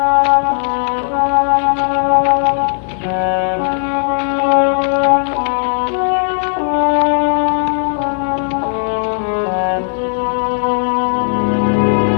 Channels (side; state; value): right; silent; digital silence